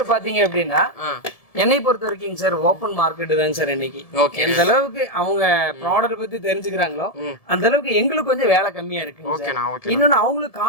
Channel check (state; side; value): late; right; 1.7 ms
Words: பாத்தீங்க அப்படின்னா என்னை பொறுத்த வரைக்கும் சார் ஓப்பன் மார்க்கெட் தாங்க சார் இன்னைக்கு. எந்த அளவுக்கு அவங்க ப்ராடக்ட் பத்தி தெரிஞ்சுக்கிறாங்களோ அந்த அளவுக்கு எங்களுக்கு கொஞ்சம் வேலை கம்மியா இருக்கு. இன்னொன்னு அவங்களுக்கு